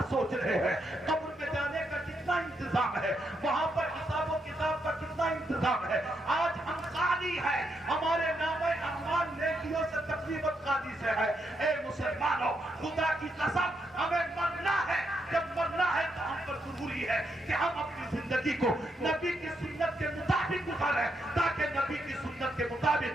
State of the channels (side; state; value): both; normal; correlation 0.80